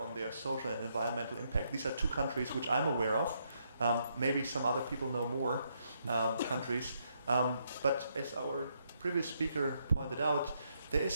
their social and environmental impact. These are two countries which I'm aware of. Maybe some other people know more countries. But as our previous speaker pointed out, there is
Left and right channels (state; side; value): inverted; both; correlation -0.76